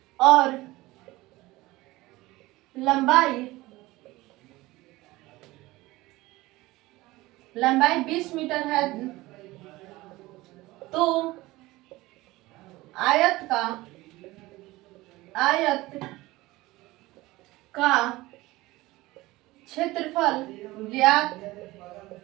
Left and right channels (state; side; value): quieter; left; 19.4 dB